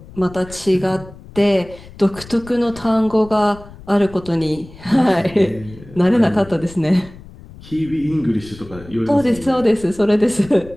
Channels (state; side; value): noise; left; rumble, 19 dB below the sound